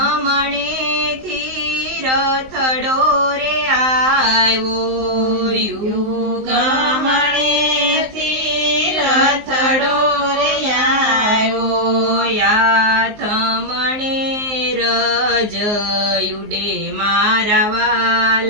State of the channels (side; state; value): left; late; 19 ms